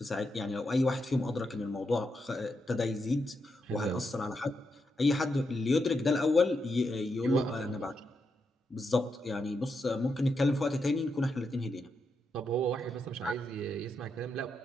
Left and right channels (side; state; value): both; normal; correlation 0.83